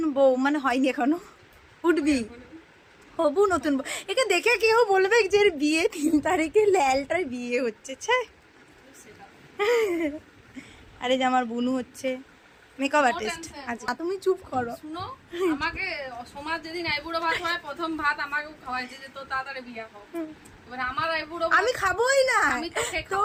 বউ মানে হয়নি এখনো, উঠবি হবু নতুন বউ। একে দেখে কেউ বলবে যে এর বিয়ে 3 তারিখে, ল্যালটার বিয়ে হচ্ছে। আরে যে আমার বুনু হচ্ছে মেকআপ আর্টিস্ট। আচ্ছা তুমি চুপ করো। শুনো, আমাকে সমাজ যেদিন আইবুড়ো ভাত হয়, প্রথম ভাত আমাকে খাওয়াইছে যে তো তাড়াতাড়ি বিয়ে হোক। এবার আমার আইবুড়ো আমি খাবোই না, আমি তো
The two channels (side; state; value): both; identical; correlation 1.00